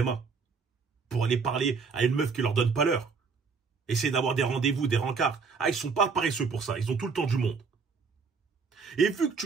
Pour aller parler à une meuf qui leur donne pas l'heure. Essayer d'avoir des rendez-vous, des rencarts. Ils sont pas paresseux pour ça. Ils ont tout le temps du monde. Et vu que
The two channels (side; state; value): left; quieter; 5.1 dB